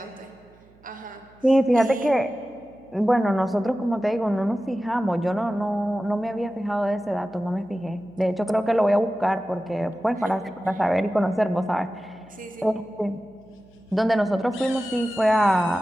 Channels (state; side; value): noise; right; hum, 29 dB below the sound